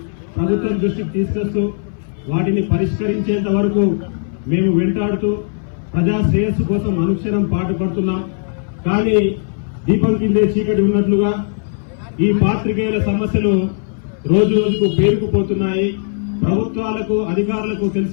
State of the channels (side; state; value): right; silent; 61 dB below the other